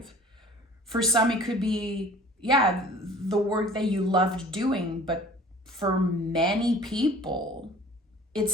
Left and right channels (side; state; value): both; normal; correlation 0.48